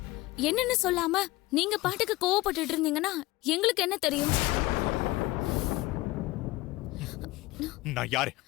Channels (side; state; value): right; quieter; 19.4 dB